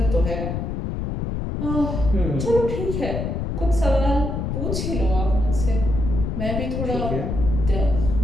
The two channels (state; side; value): noise; left; rumble, 3 dB below the sound